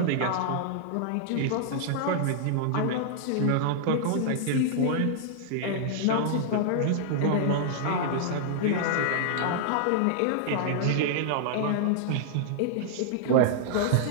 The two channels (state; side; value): different; both; correlation -0.01